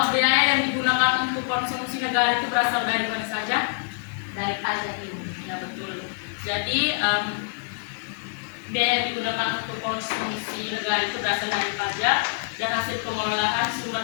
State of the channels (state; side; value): silent; right; digital silence